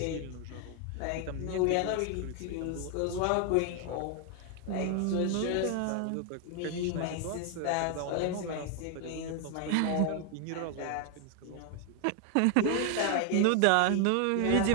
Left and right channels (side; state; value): both; different; correlation 0.01